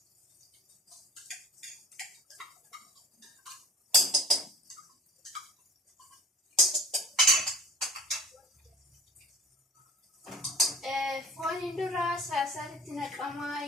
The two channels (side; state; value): both; normal; correlation 0.43